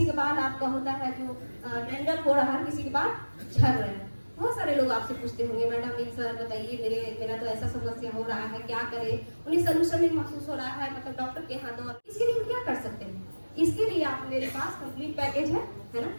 का बाल आपका होता है जो डैंड्रफ हो रहा है, किसी के बाल झड़ रहे हैं। बहुत सारे लोग आपसे पूछते होंगे मैडम एक सर बताइए मेरा तो ऐसा समस्या हो रहा है क्या करे, उन्हें सोल्यूशन नहीं महसूस हो रहा है, मतलब डॉक्टर के यहाँ दो। इसके लिए हम क्या कर सकते हैं, इसके लिए आप मेरे पास कंप्लीट पैकेज है ना।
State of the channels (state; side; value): inverted; both; correlation -1.00